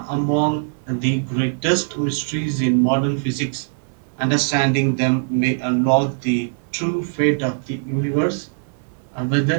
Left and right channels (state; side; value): silent; left; digital silence